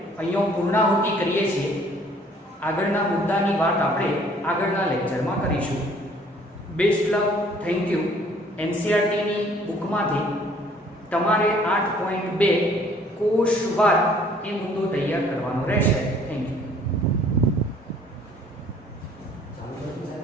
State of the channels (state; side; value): normal; both; correlation 0.57